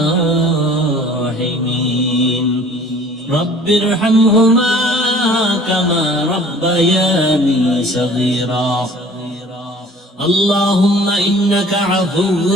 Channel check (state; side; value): normal; both; correlation 0.49